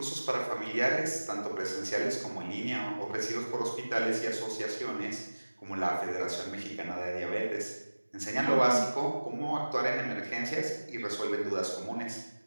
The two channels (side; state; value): both; inverted; correlation -1.00